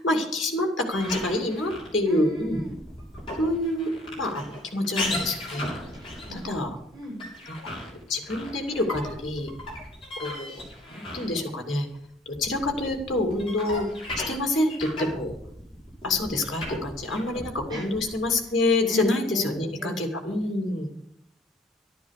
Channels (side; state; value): both; normal; correlation 0.56